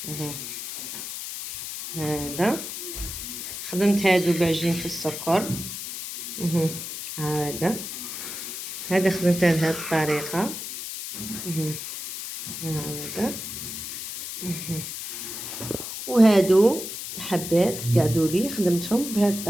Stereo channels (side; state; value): left; noise; hiss, 7 dB below the sound